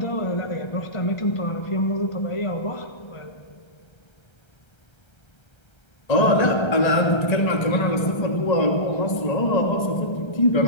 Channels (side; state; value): right; late; 1.3 ms